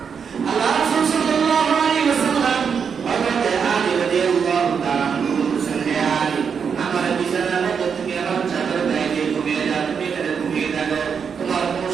আল্লাহ রাসূল সাল্লাল্লাহু আলাইহি ওয়াসাল্লাম হযরত আলী রাদিয়াল্লাহু তাআলা বলেছেন, হে আলী, আমার বিছানার মধ্যে থেকে আমার চাদর গায়ে দিয়ে ঘুমিয়ে যাও, তুমি এখানে ঘুমিয়ে থাকো, তোমার কোনো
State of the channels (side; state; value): left; quieter; 6.6 dB